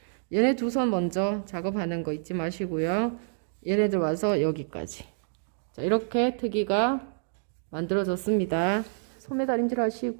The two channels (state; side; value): silent; left; digital silence